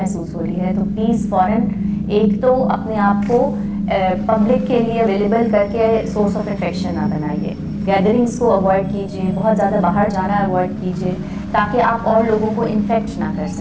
हो रही है, तो प्लीज़ फ़ौरन एक तो अपने आप को पब्लिक के लिए अवेलेबल करके सोर्स ऑफ इन्फेक्शन ना बनाइए। गैदरिंग्स को अवॉइड कीजिए, बहुत ज़्यादा बाहर जाना अवॉइड कीजिए। ताकि आप और लोगों को इन्फेक्ट ना कर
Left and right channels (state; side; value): identical; both; correlation 1.00